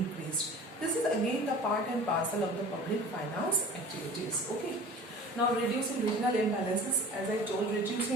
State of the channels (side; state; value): both; normal; correlation 0.41